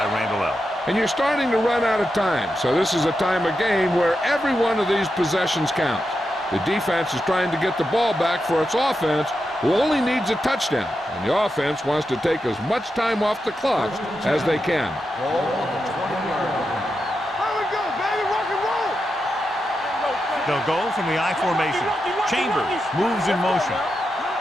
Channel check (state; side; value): normal; both; correlation 0.87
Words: Randall. And you're starting to run out of time, so this is a time of game where every one of these possessions counts. The defense is trying to get the ball back for its offense, who only needs a touchdown, and the offense wants to take as much time off the clock as they can. Ball on the 20-yard line. Here we go, baby, rock and roll. They'll go from the I formation. Chambers moves in motion.